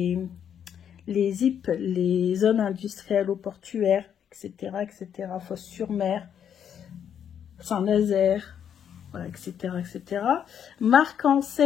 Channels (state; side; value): quieter; right; 8.7 dB